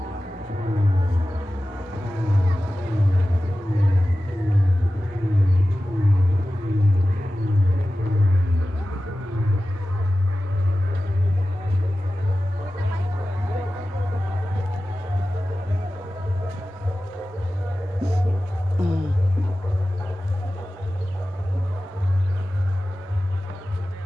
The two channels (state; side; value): normal; both; correlation 0.95